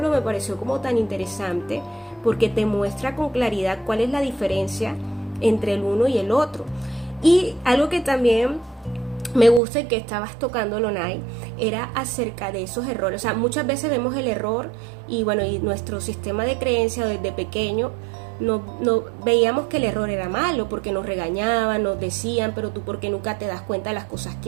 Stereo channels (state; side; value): drops out; left; at 9.6 s